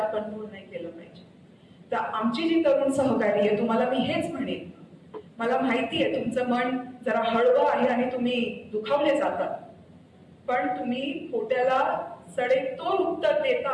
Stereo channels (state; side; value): identical; both; correlation 1.00